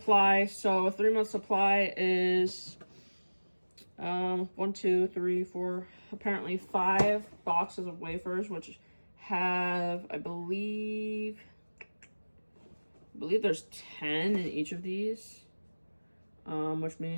So a 3 month supply is 1, 2, 3, 4, apparently 5 boxes of wafers, which have, I believe there's 10 in each of these, which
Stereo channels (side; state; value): both; inverted; correlation -1.00